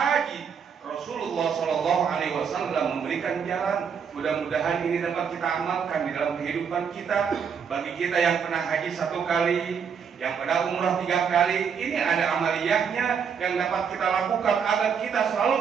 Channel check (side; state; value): left; quieter; 6.8 dB